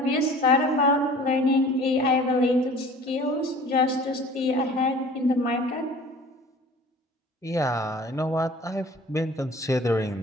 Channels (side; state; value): both; normal; correlation 0.46